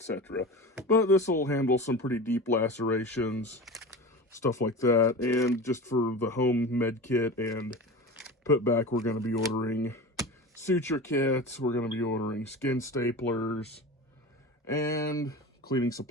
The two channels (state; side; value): normal; both; correlation 0.31